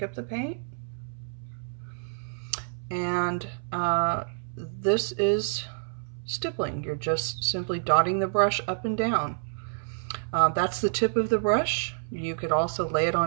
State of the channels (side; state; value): left; silent; 59 dB below the other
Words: up the paint. And this is stippling. You're just simply dotting the brush up and down. That's the tip of the brush. You could also lay it